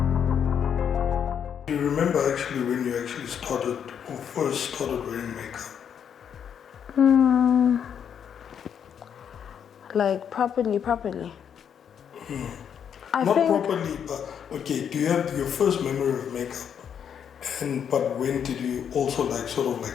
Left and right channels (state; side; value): quieter; right; 8.1 dB